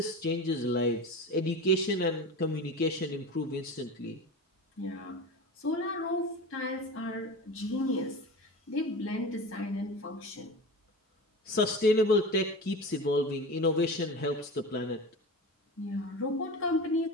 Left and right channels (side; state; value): both; normal; correlation 0.30